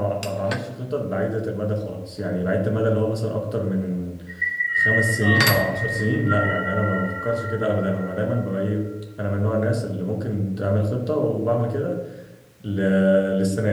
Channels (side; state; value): both; identical; correlation 1.00